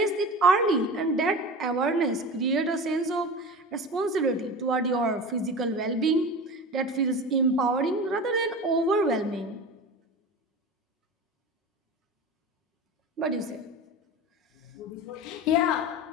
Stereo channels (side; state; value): both; normal; correlation 0.31